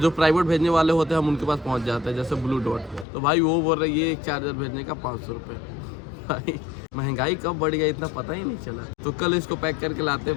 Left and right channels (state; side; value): drops out; right; at 3.1 s